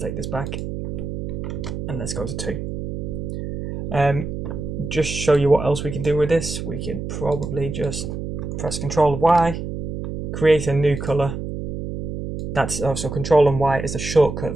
this back and let's go to 2. Just show you what else we can do with this. We could probably just press Control Y, create a new color. That's also Control and Y is a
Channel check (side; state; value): right; noise; hum, 5 dB below the sound